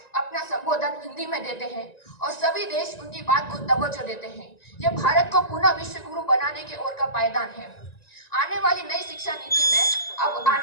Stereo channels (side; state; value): right; late; 1.9 ms